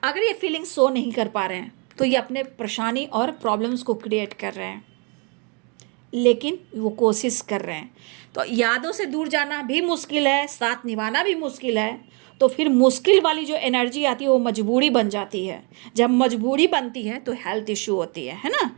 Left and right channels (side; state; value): left; quieter; 34.1 dB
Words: अगर ये फीलिंग शो नहीं कर पा रहे हैं तो ये अपने परेशानी और प्रॉब्लम्स को क्रिएट कर रहे हैं, लेकिन वो कोशिश कर रहे हैं। तो यादों से दूर जाना भी मुश्किल है, साथ निभाना भी मुश्किल है। तो फिर मुश्किल वाली जो एनर्जी आती है वो मजबूरी बन जाती है। जब मजबूरी बनती है तो हेल्थ इश्यू होती है ना।